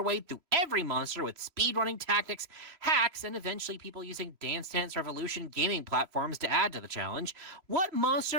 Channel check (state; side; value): late; left; 3.0 ms